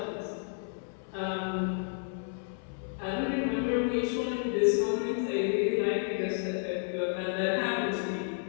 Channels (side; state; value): right; silent; 57 dB below the other